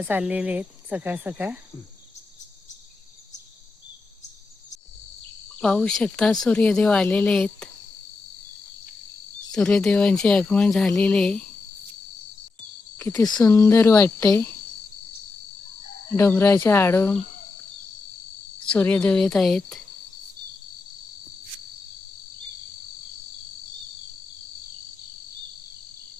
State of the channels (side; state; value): right; quieter; 3.8 dB